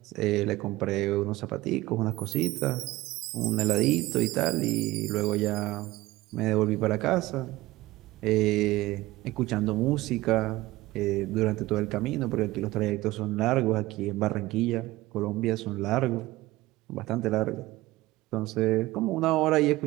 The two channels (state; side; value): quieter; left; 18.4 dB